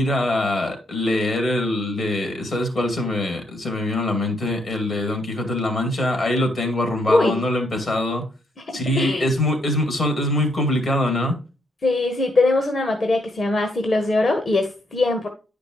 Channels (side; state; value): both; normal; correlation 0.75